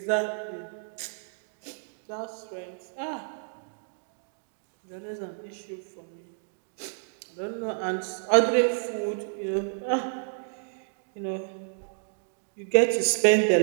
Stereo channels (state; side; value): silent; left; digital silence